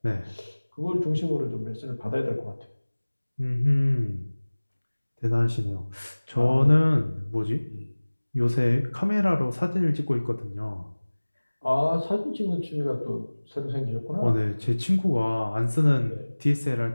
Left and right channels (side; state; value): both; inverted; correlation -1.00